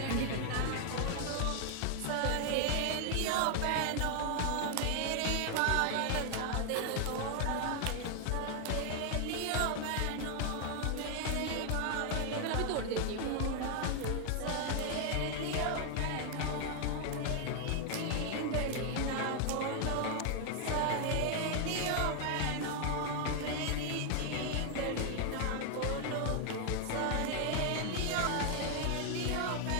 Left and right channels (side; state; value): both; different; correlation 0.00